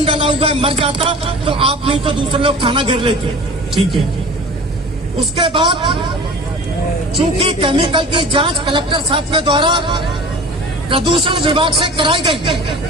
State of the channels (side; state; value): both; normal; correlation 0.40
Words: डाला हुआ है, मर जाता तो आप नहीं तो दूसरे लोग थाना घेर लेते। ठीक है। उसके बाद चूंकि केमिकल की जांच कलेक्टर साहब के द्वारा प्रदूषण विभाग से कराई गई,